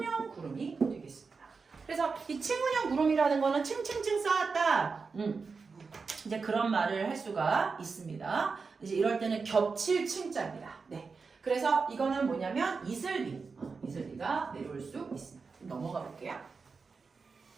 구름이 되겠습니다. 그래서 이 충운형 구름이라는 거는 층층층 쌓았다. 이제 그런 말을 할 수가 있습니다. 이제 이럴 때는 겹칠 층자입니다. 네. 그래서 이거는 뭐냐면 이슬비가 내려올 수 있습니다. 넘어가 볼게요.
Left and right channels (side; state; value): left; quieter; 4.8 dB